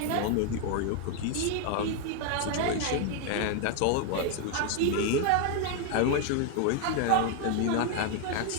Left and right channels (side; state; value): both; different; correlation 0.01